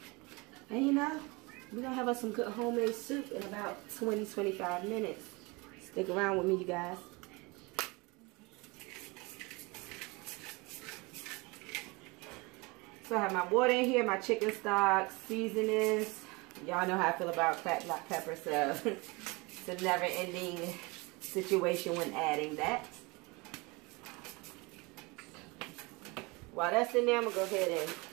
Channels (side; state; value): left; quieter; 26.1 dB